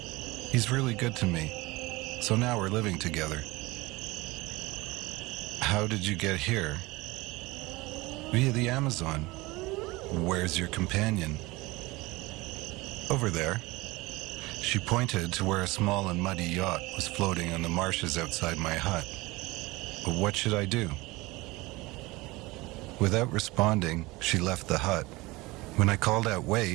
He's really good to me, so now we're living together." "How did you get here?" "Via the Amazon." "Where's your companion?" "Over there." She pointed to where a small and muddy yacht was floating on the marshes outside my hut. But what should I do? Without responding, she left the hut. When I called out,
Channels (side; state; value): left; quieter; 22.0 dB